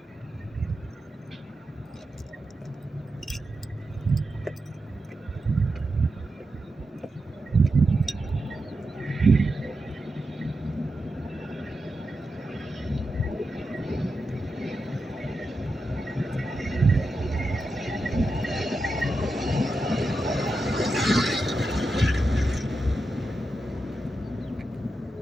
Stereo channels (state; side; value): normal; both; correlation 0.88